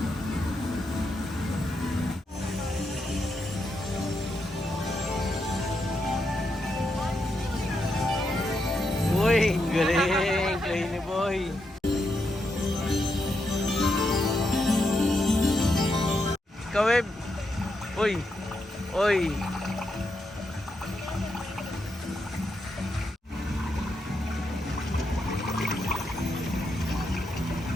Kaweb. Uy. Uy.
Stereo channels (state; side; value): normal; both; correlation 0.83